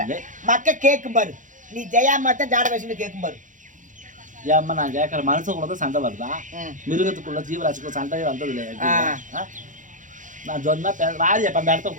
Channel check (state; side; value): late; left; 0.37 ms